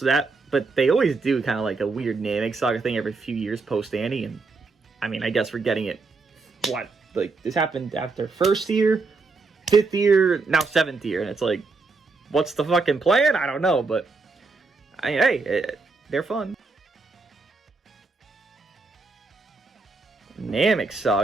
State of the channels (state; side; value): quieter; left; 4.0 dB